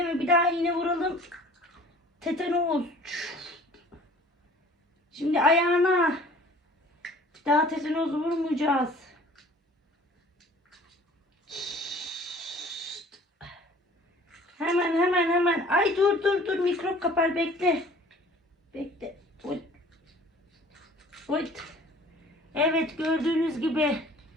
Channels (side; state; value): both; normal; correlation 0.50